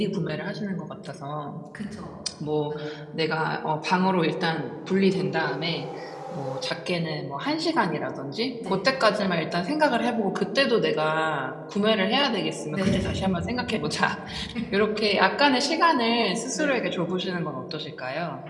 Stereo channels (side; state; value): both; identical; correlation 1.00